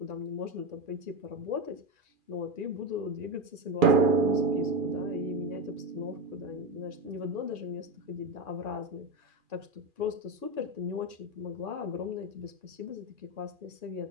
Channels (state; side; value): late; left; 2.4 ms